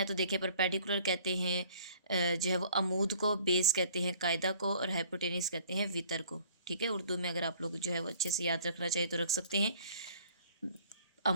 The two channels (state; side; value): inverted; both; correlation -0.54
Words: तो देखिए परपेंडिकुलर कहते हैं जो है वो अमूद को, बेस कहते हैं कायदा को और हाइपोटेनिस कहते हैं वितर को। ठीक है, उर्दू में अगर आप लोग जो है वो अच्छे से याद रखना चाहिए तो रख सकते हैं।